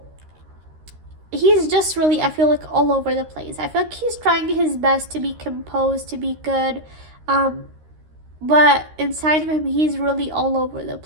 he's just really, I feel like, all over the place. I feel like he's trying his best to be composed, to be good. But inside of him, he's really all over the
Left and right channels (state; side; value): late; left; 13 ms